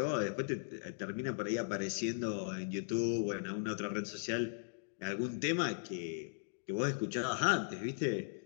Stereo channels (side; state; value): right; silent; digital silence